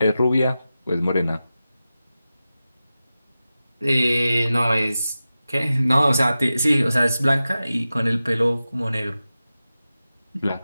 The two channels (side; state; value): both; inverted; correlation -0.94